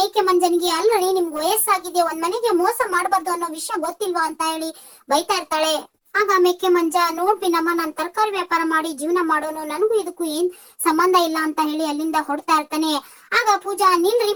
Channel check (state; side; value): identical; both; correlation 1.00